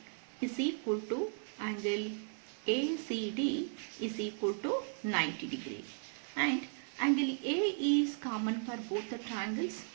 is equal to angle ACD is equal to 90 degree, and angle A is common for both the triangles.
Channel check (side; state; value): left; silent; 54 dB below the other